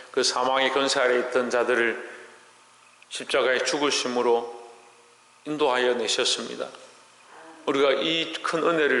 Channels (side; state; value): both; identical; correlation 1.00